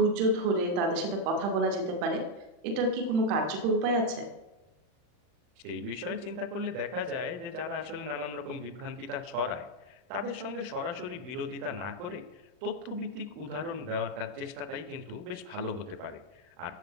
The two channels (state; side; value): late; left; 40 ms